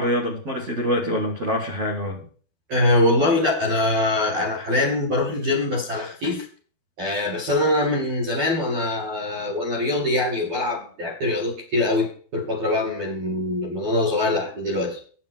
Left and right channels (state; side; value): late; left; 12 ms